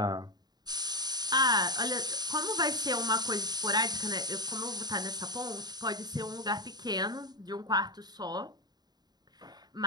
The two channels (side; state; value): left; late; 0.20 ms